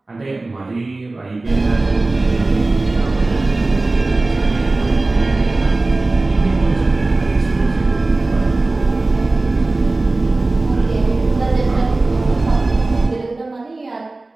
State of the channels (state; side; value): quieter; left; 3.1 dB